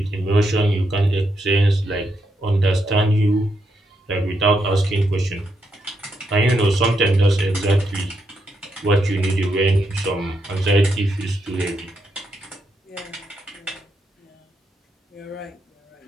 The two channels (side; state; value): both; normal; correlation 0.81